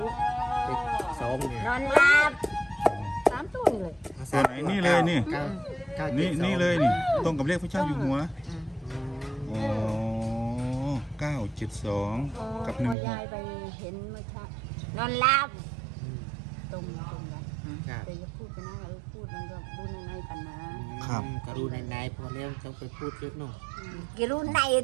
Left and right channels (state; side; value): drops out; left; at 13.0 s